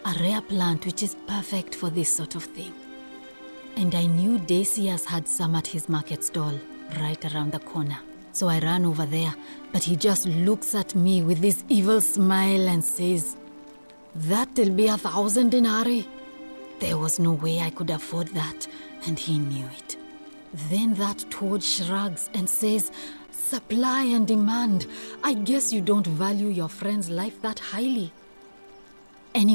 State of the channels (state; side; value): inverted; both; correlation -1.00